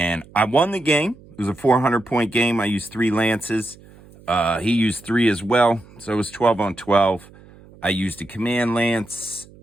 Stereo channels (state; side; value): noise; right; hum, 23 dB below the sound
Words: I won the game. It was a 400-point game. I used 3 lances. He used 3 as well, so it was 12 on 12. I used a command lance,